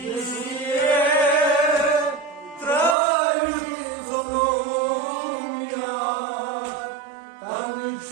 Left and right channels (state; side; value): drops out; left; at 3.0 s